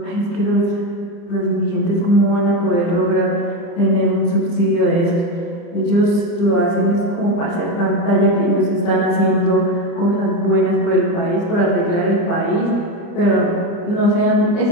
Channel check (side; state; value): right; late; 29 ms